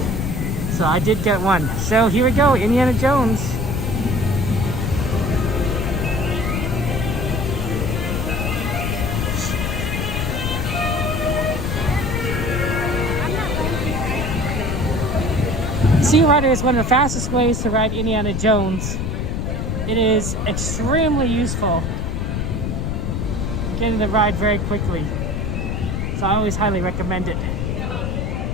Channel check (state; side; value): noise; left; rumble, 1 dB below the sound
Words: So I did get one. So here we go, Indiana Jones. Sea Rider is one of the fastest ways to ride Indiana Jones. It is extremely useful, getting the ride very quickly. So I always highly recommend it.